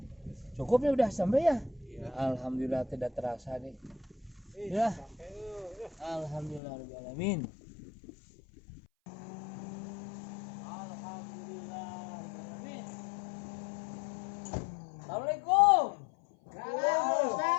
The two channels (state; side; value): drops out; right; at 6.6 s